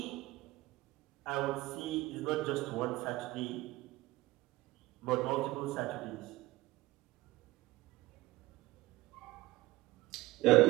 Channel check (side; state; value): left; quieter; 18.6 dB